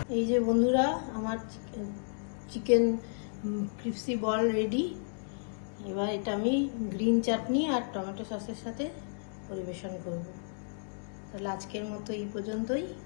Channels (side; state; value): right; silent; digital silence